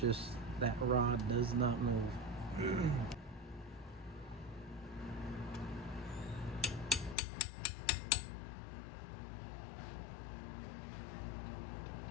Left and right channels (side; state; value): right; drops out; at 7.2 s